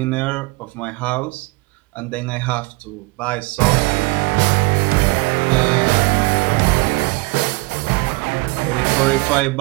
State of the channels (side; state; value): left; quieter; 26.0 dB